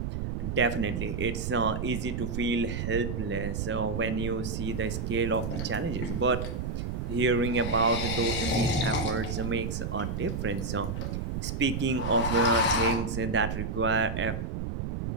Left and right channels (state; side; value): noise; right; rumble, 3 dB below the sound